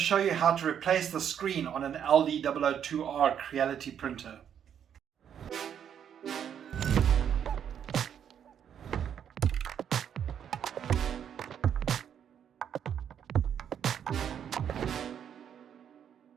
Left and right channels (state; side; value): quieter; left; 8.8 dB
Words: you how to replace the screen on an LD002R Creality printer.